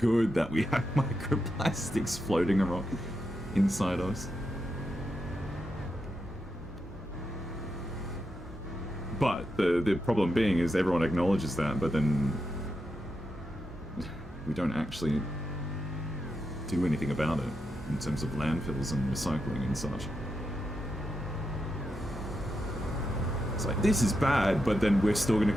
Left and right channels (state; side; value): normal; both; correlation 0.86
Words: that we have microplastics floating around inside us. But the problem being is everyone acknowledges that, but then we don't actually do anything about it in terms of landfills and recycling and such. It's like, this is bad, but then we're still going